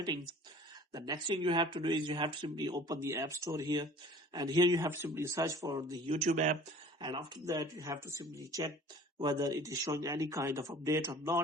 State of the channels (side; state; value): both; normal; correlation 0.47